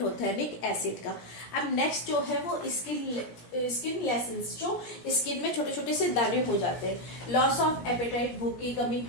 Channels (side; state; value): right; late; 17 ms